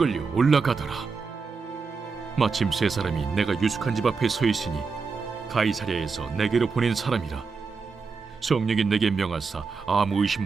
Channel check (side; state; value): left; quieter; 4.9 dB